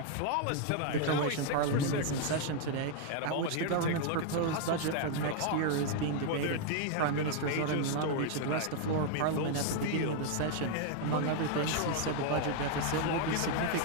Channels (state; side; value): different; both; correlation 0.00